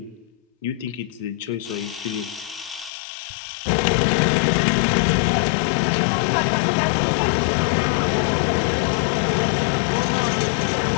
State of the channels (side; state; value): right; drops out; at 2.9 s